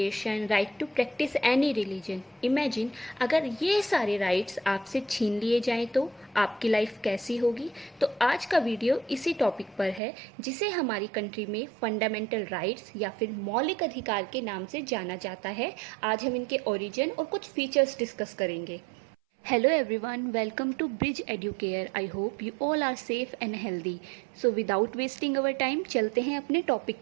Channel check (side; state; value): left; drops out; at 10.0 s